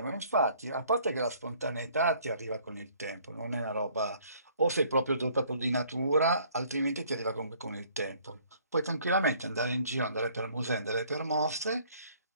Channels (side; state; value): both; inverted; correlation -0.59